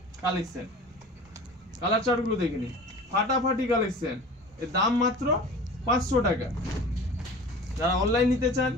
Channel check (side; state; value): both; normal; correlation 0.39